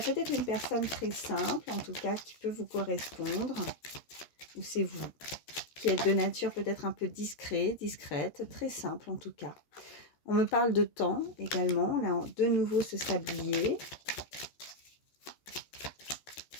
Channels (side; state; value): right; late; 13 ms